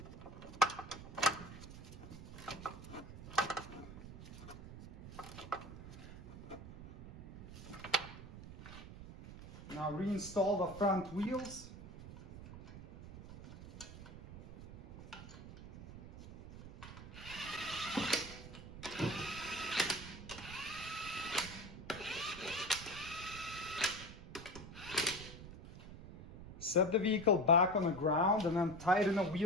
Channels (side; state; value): right; noise; rumble, 13 dB below the sound